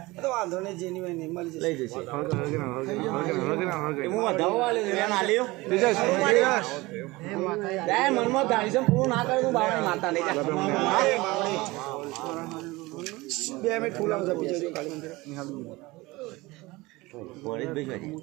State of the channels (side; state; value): left; quieter; 21.6 dB